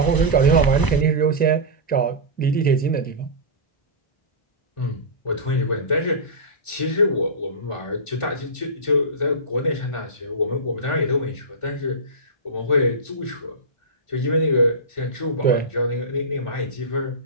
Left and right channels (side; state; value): right; late; 1.4 ms